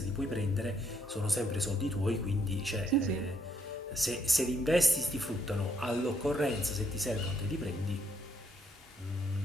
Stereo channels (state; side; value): normal; both; correlation 0.71